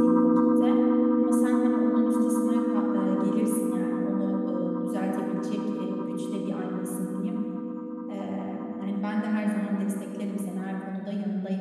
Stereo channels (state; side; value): identical; both; correlation 1.00